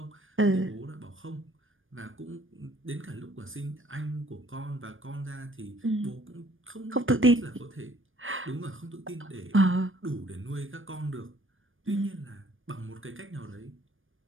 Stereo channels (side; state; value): left; late; 0.58 ms